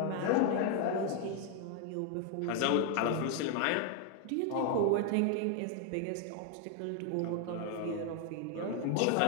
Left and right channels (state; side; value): different; both; correlation 0.00